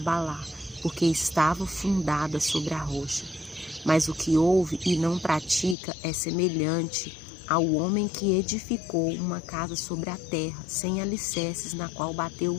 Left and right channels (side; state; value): right; drops out; at 5.8 s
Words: porque estava fundada sobre a rocha. Mas o que ouve e não pratica é semelhante ao homem que edificou uma casa sobre a terra, sem alicerces, na qual bateu